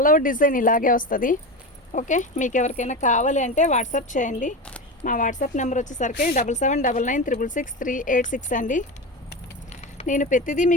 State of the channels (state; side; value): normal; both; correlation 0.22